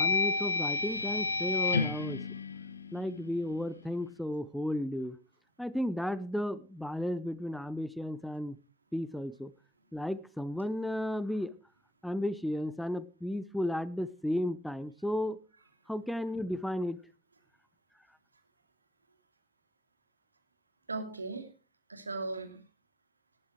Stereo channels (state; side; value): normal; both; correlation 0.39